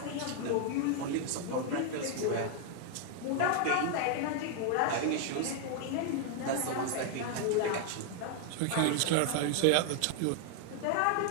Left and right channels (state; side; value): different; both; correlation 0.00